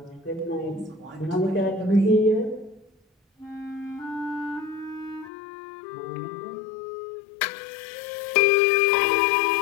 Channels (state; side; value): drops out; right; at 5.3 s